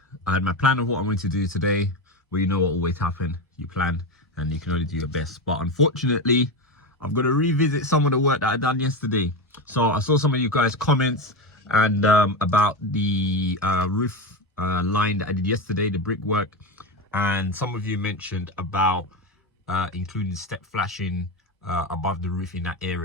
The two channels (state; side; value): normal; both; correlation 0.17